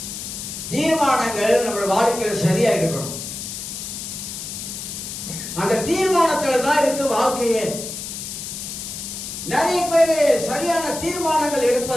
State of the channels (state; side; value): noise; left; hiss, 7 dB below the sound